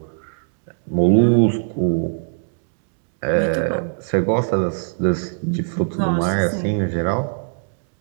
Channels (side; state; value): left; silent; digital silence